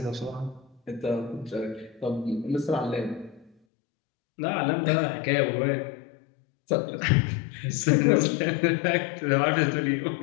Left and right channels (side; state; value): right; drops out; at 3.5 s